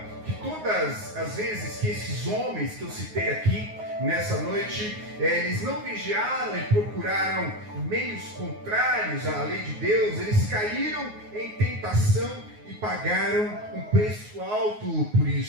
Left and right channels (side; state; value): left; late; 9.5 ms